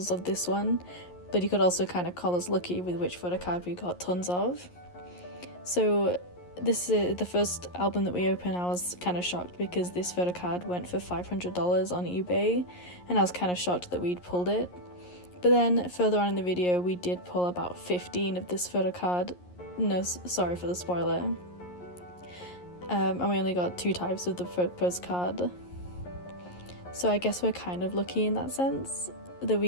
of this one, but you could also kind of call us lucky with which photo card we got tons of. So this is the first album that we opened. I was kind of shocked because this photo card went for $500 on eBay, and I was kind of shocked that we'd pulled it. But then further on in the video, we did pull about 15 of this photo card. No, sorry for the spoiler. And we only got 2 types of the postcard. So I guess we're kind of lucky in that sense that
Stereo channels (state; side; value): late; right; 11 ms